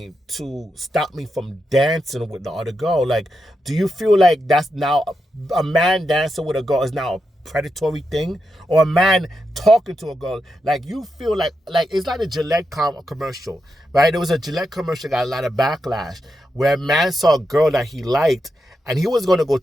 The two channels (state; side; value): normal; both; correlation 0.86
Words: to stop me from dancing with the other girl? Like, do you feel like that's now a man dancing with a girl is now a predatory thing? Or a man talking to a girl? Like, you feel like it's like a Gillette commercial, right? There was a Gillette commercial that got a lot of backlash where a man saw a girl that he liked and he was going to go